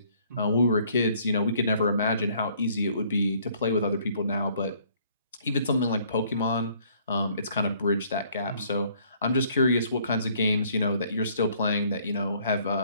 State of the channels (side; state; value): both; inverted; correlation -0.62